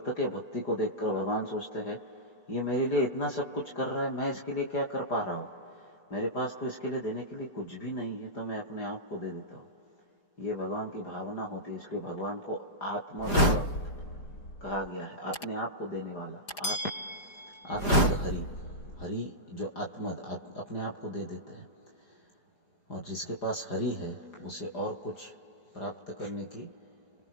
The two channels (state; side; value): late; right; 4.9 ms